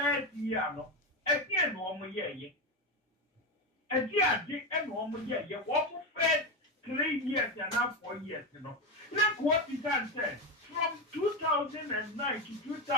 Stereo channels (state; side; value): normal; both; correlation 0.13